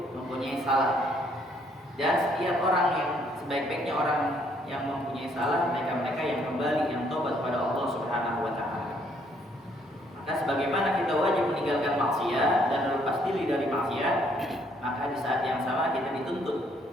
mempunyai salah. Dan setiap orang yang sebaik-baiknya orang yang mempunyai salah, mereka yang kembali, yang tobat kepada Allah Subhanahu wa taala. Maka sebagaimana kita wajib meninggalkan maksiat dan lepas diri dari maksiat, maka di saat yang sama kita dituntut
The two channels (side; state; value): both; normal; correlation 0.67